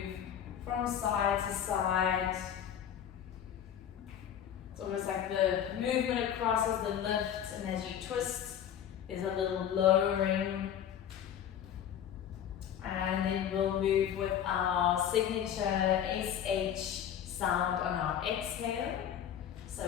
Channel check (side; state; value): right; quieter; 9.5 dB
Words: from side to side. It's almost like the movement across is the lift, and as you twist, there's a little lowering. And then we'll move with our signature SH sound on our exhale.